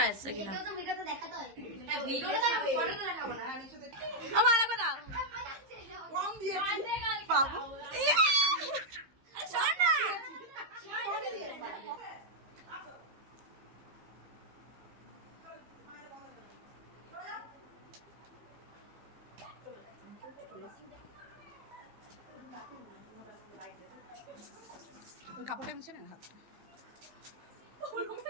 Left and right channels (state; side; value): late; left; 15 ms